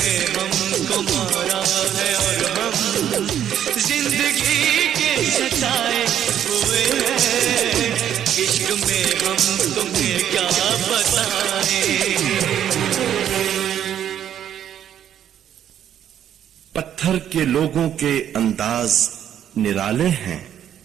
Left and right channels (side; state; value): left; quieter; 10.0 dB